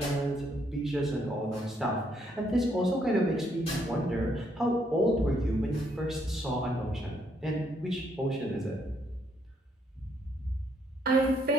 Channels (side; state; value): both; normal; correlation 0.72